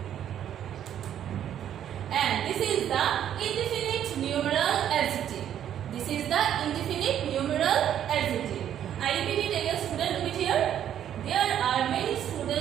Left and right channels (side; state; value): left; quieter; 10.3 dB